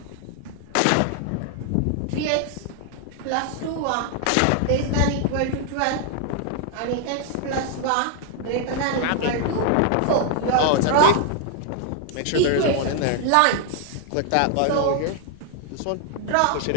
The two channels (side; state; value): both; different; correlation 0.00